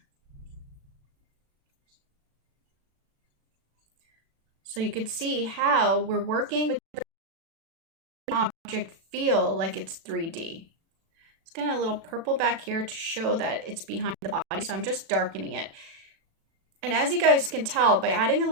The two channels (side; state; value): left; late; 36 ms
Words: So you could see how we're working with the object feel like it's 3D. It's got a little purple back here to show that it's behind the body, so I'm just darkening it. And as you guys can tell, by adding a